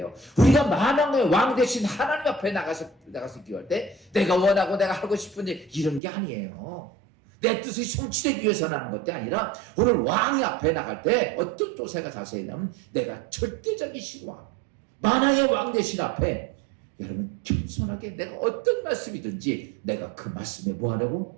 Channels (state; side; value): drops out; left; at 6.0 s